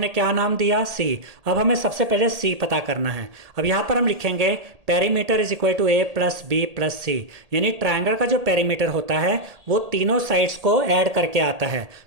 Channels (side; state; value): left; late; 1.8 ms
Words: क्या नाम दिया, c। अब हमें सबसे पहले c पता करना है। अब यहाँ पर हम लिखेंगे perimeter is equal to a plus b plus c, यानी ट्रायंगल का जो पेरीमीटर होता है वो तीनों साइड्स को ऐड करके आता है।